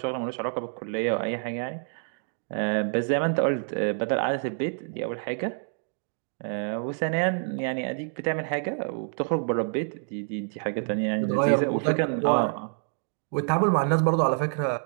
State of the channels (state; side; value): silent; left; 57 dB below the other